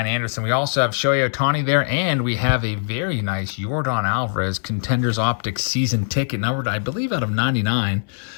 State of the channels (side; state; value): right; silent; 65 dB below the other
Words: Anderson. We also have Shohei Ohtani there, and we have a very nice Yordan Alvarez Contenders Optics season ticket, numbered, I believe, out of 99.